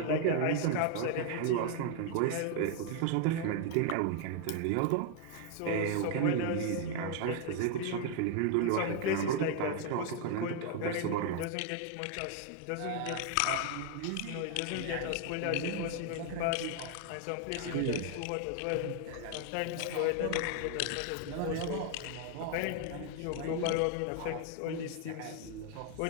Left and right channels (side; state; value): both; different; correlation 0.00